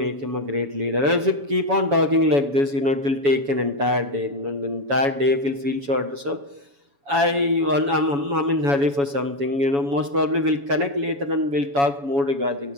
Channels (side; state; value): left; late; 7.1 ms